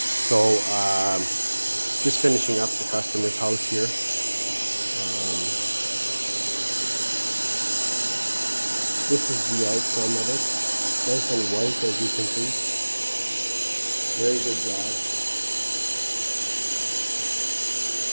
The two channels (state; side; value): inverted; both; correlation -1.00